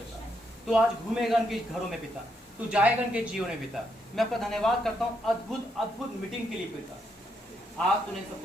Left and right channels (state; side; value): normal; both; correlation 0.78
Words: तू आज घूमेगा इनके घरों में पिता, तू जाएगा इनके जीवन में पिता। मैं आपका धन्यवाद करता हूँ अद्भुत अद्भुत मीटिंग के लिए पिता। आज तूने